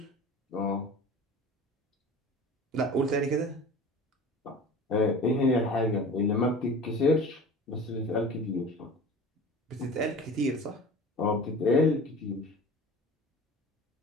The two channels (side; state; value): both; normal; correlation 0.39